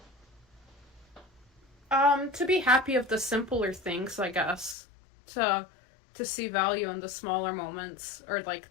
To be happy of the simpler things, I guess. To to see value in the smaller moments, or like,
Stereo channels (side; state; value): right; drops out; at 4.8 s